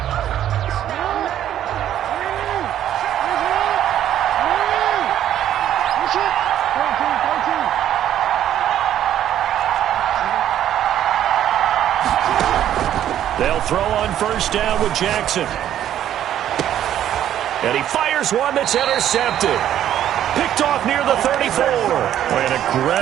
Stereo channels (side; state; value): left; quieter; 11.2 dB